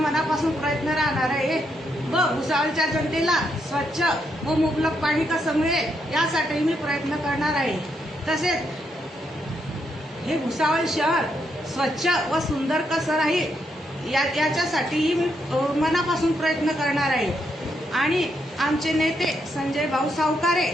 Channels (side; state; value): both; normal; correlation 0.79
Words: प्रयत्न राहणार आहे व भुसावळच्या जनतेला स्वच्छ व मुबलक पाणी कसं मिळेल यासाठी मी प्रयत्न करणार आहे। तसेच हे भुसावळ शहर स्वच्छ व सुंदर कसं राहील याच्यासाठीही मी मनापासून प्रयत्न करणार आहे। आणि आमचे नेते संजय भाऊ सावकारे